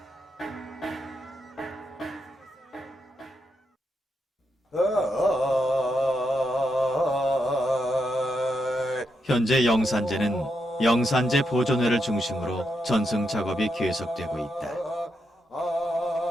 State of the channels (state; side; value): normal; both; correlation 0.83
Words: 현재 영산제는 영산제 보존회를 중심으로 전승 작업이 계속되고 있다.